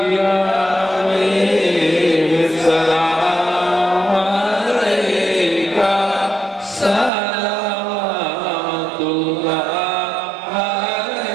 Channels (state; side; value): drops out; left; at 7.1 s